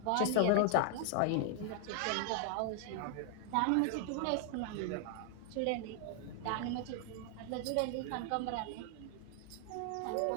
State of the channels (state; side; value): different; both; correlation 0.00